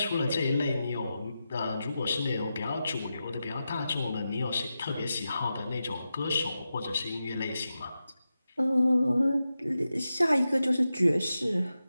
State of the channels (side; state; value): both; inverted; correlation -0.91